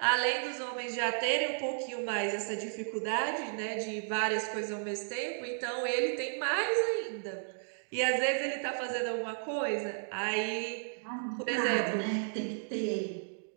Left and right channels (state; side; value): silent; left; digital silence